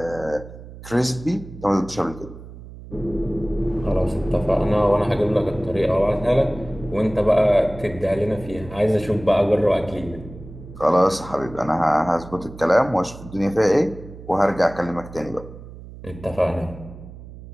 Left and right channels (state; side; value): noise; right; hum, 16 dB below the sound